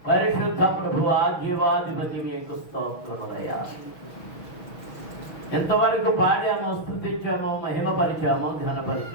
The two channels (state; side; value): late; right; 6.3 ms